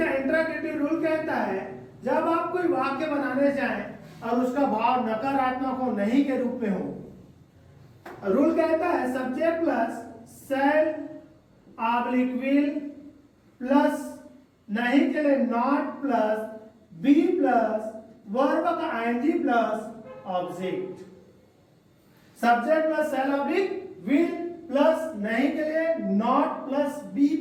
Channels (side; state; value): both; identical; correlation 1.00